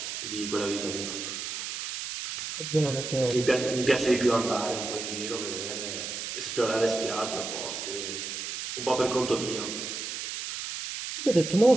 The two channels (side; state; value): right; noise; hiss, 5 dB below the sound